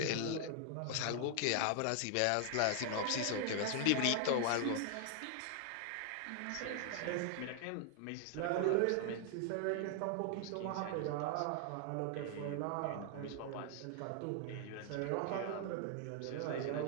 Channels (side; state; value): both; different; correlation 0.00